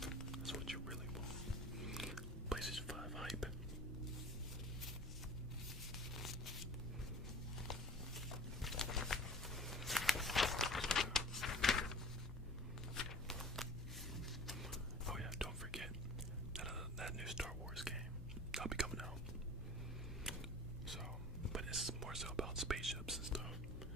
that new Star Wars game that'll be coming out. So, but it's more so about spaceships and stuff,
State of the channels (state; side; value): normal; both; correlation 0.41